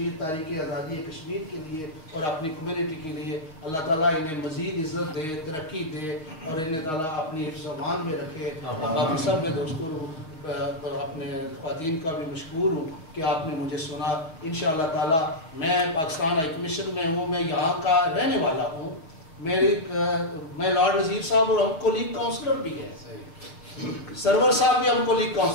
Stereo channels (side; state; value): right; late; 6.4 ms